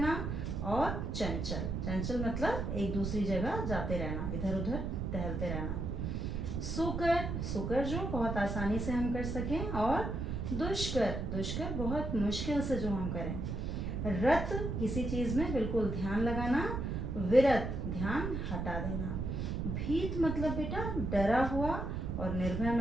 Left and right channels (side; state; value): right; noise; rumble, 2 dB below the sound